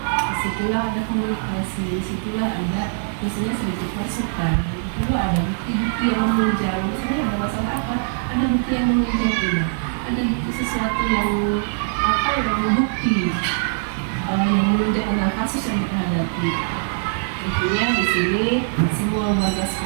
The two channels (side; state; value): left; silent; 58 dB below the other